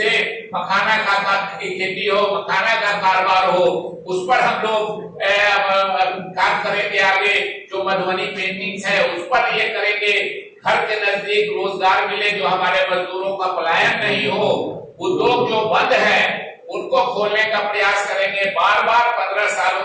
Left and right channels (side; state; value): both; identical; correlation 1.00